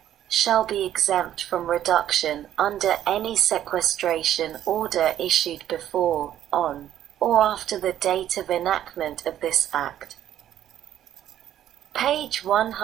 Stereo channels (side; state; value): left; quieter; 11.4 dB